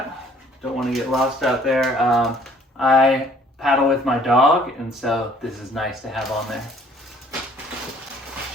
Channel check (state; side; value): normal; both; correlation 0.58